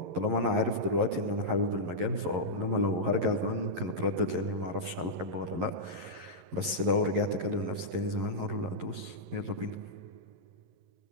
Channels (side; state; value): left; late; 11 ms